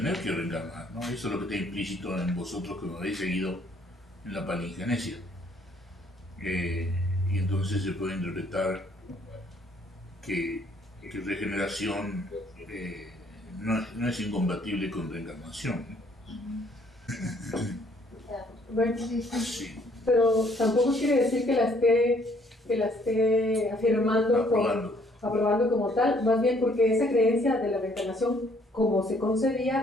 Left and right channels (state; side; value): normal; both; correlation 0.64